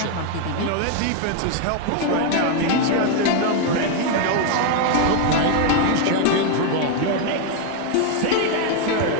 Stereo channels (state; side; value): different; both; correlation 0.01